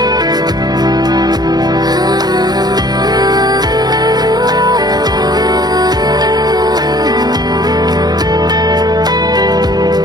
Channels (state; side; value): late; left; 0.19 ms